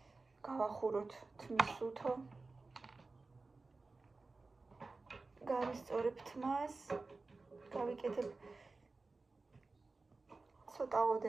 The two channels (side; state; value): left; quieter; 3.7 dB